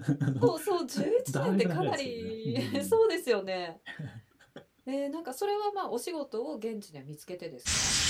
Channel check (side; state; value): both; identical; correlation 1.00